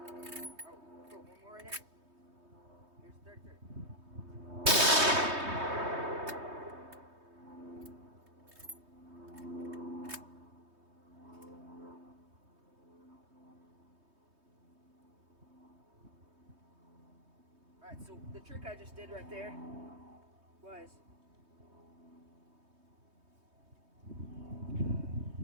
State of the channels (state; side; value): late; left; 3.2 ms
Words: Oh, put one more in it. Here's the 30-30. Alright, so the trick I just did right there was